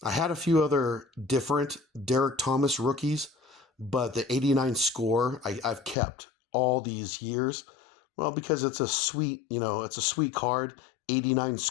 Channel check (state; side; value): drops out; right; at 6.0 s